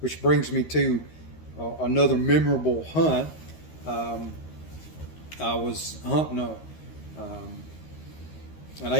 brings me to another memorable hunt. I was hunting an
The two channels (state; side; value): late; right; 13 ms